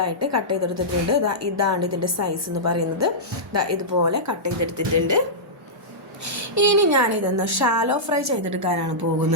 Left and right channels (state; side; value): normal; both; correlation -0.14